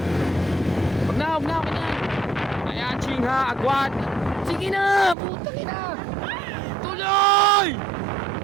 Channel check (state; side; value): drops out; left; at 5.2 s